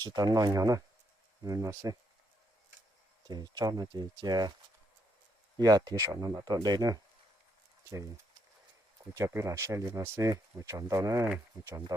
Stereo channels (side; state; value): both; normal; correlation 0.75